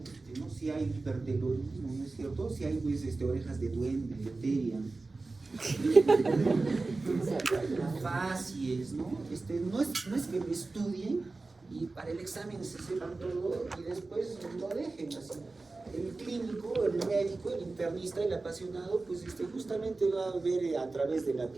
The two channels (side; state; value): left; quieter; 3.5 dB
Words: ¿no? Si hay hipertelorismo, ¿no es cierto? Si hay pues, orejas de duende, de teria, facies, ¿no? No es que lo estudien y para el examen se sepan todo y después lo dejen así. El clínico, el médico, el internista, el apasionado, pues justamente va a ver a través de la